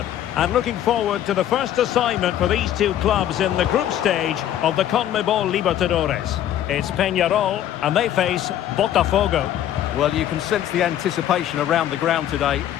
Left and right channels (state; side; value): quieter; right; 11.4 dB